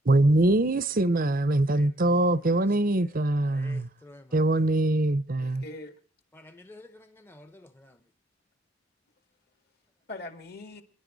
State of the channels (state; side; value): normal; both; correlation 0.67